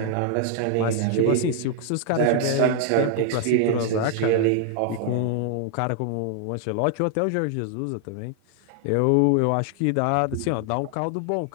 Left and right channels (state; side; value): different; both; correlation 0.00